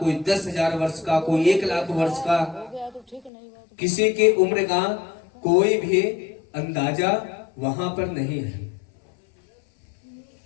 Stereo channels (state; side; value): drops out; right; at 3.3 s